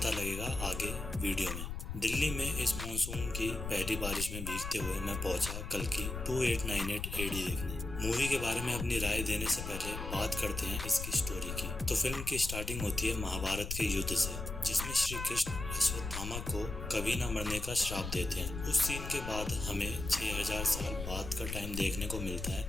लगेगा आगे वीडियो में। दिल्ली में इस मानसून की पहली बारिश में भीगते हुए मैं पहुंचा कल की 2898 एडी देखने। मूवी के बारे में अपनी राय देने से पहले बात करते हैं इसकी स्टोरी की। तो फिल्म की स्टार्टिंग होती है महाभारत के युद्ध से, जिसमें श्री कृष्ण अश्वत्थामा को कभी न मरने का श्राप देते हैं। उस सीन के बाद हमें 6000 साल बाद का टाइम देखने को मिलता है।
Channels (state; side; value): noise; left; rumble, 6 dB below the sound